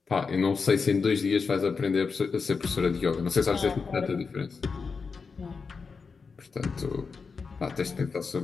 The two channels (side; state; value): right; quieter; 5.0 dB